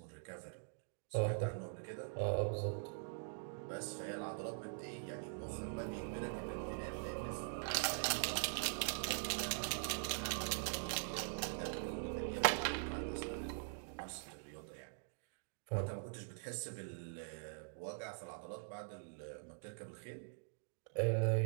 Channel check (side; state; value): left; silent; digital silence